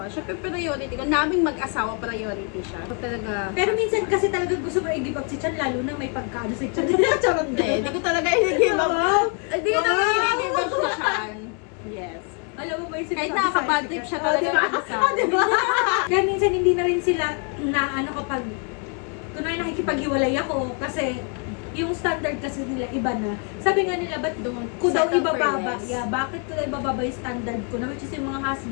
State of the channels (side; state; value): right; quieter; 38.2 dB